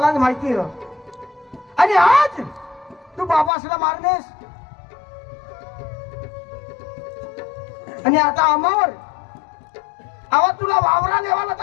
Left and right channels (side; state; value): right; drops out; at 3.5 s